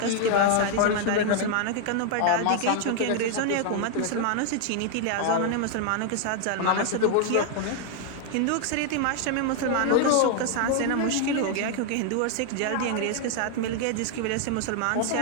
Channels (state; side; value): different; both; correlation 0.00